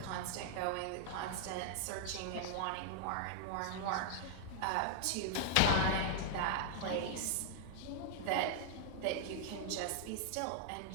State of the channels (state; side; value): different; both; correlation -0.01